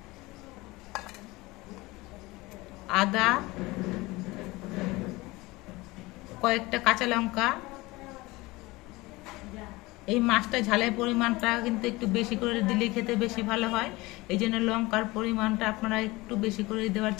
আদা, কয়েকটা কাঁচা লঙ্কা। এই মাছটা ঝালের পরিমাণটা কিন্তু একটু বেশি করে দিলে খেতে বেশি ভালো হয়, এই জন্য লঙ্কার পরিমাণটা আপনারা একটু বেশি করে দেওয়ার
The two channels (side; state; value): right; quieter; 21.5 dB